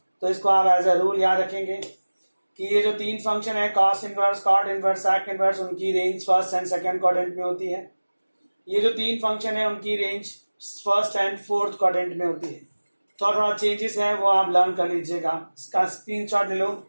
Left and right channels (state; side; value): inverted; both; correlation -1.00